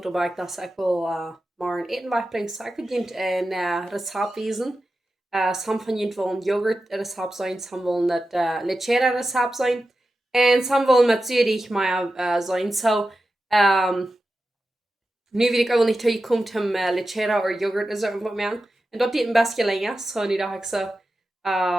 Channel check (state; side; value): normal; both; correlation 0.92